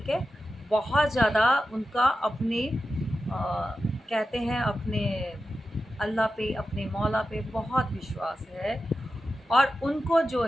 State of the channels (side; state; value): both; normal; correlation 0.91